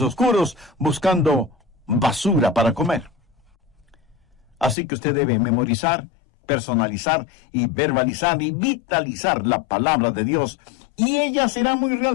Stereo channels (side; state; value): right; drops out; at 4.8 s